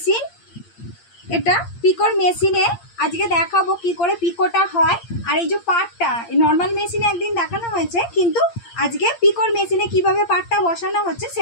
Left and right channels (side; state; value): right; late; 8.7 ms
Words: এটা পিকোর মেশিনে আজকে দেখাবো কি করে পিকোটা হয়। আর এই যে পাটটা নর্মাল মেশিনে একদিন দেখানো হয়েছে, কিন্তু আজকে পিকোর মেশিনে কিভাবে পাটটা বসানো হচ্ছে